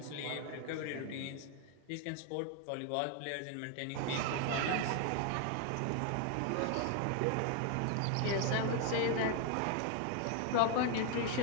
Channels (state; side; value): different; both; correlation 0.00